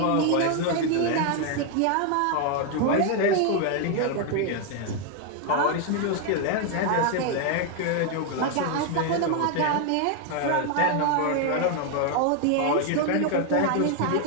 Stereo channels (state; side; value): different; both; correlation 0.01